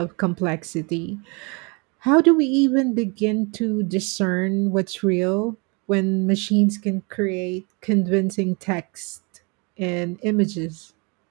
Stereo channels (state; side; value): quieter; left; 31.0 dB